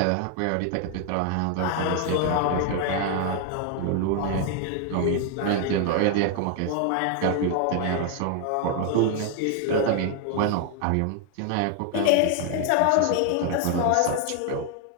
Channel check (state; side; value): different; both; correlation 0.00